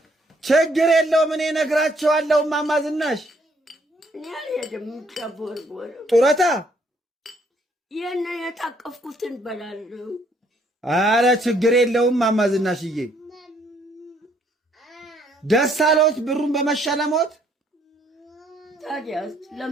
ችግር የለውም እኔ እነግራቸዋለሁ እማማ ዝናሽ እኔ አልሄድም ተቦርቦር ጡረታ የነ የታቀፍኩትን በላለሁ አረ ችግር የለውም እማማ ዝናሽዬ ደስ አለዎት ብሩን በመሸለሞት ታዲያስ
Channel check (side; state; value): both; normal; correlation 0.67